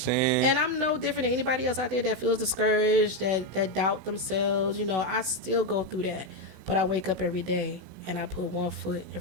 And I'm no different than anybody else out there that feels discouraged, that doubt themselves. I still go through that. But I wake up every day and I put one foot in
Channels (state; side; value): late; left; 16 ms